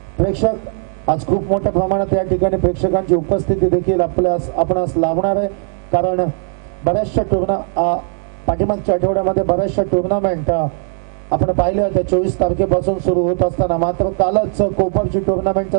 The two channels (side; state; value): left; silent; 61 dB below the other